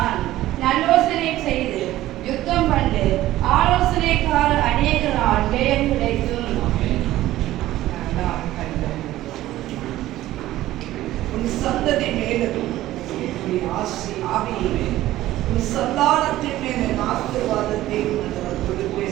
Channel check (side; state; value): left; quieter; 15.1 dB